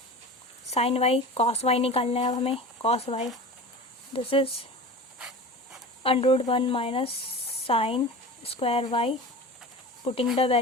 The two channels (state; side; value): normal; both; correlation 0.33